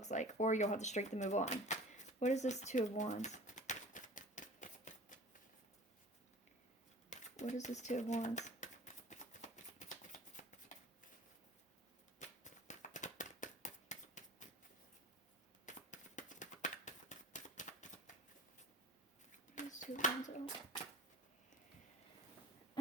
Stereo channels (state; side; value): normal; both; correlation 0.41